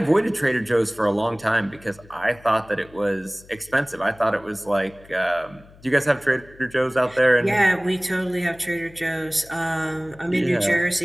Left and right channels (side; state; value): left; noise; hum, 24 dB below the sound